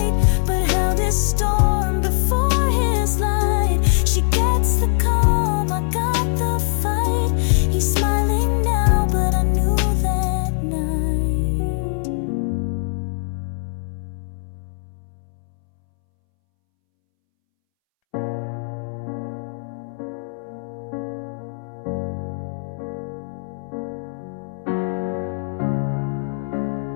but held his storm before his light. She gets the calm, I got the fight. He's smiling now, but I knew that night.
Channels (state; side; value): silent; right; 65 dB below the other